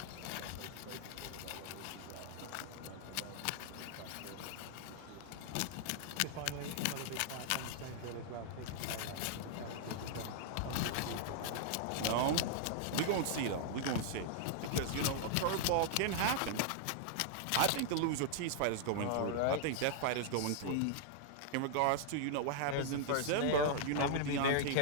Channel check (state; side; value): different; both; correlation -0.01